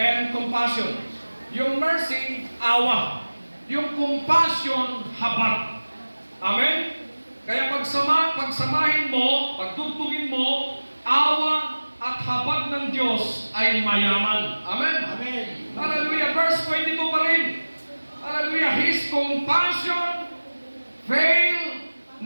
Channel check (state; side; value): inverted; both; correlation -1.00